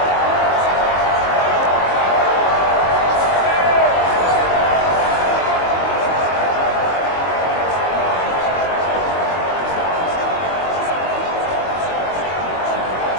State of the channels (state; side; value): late; right; 22 ms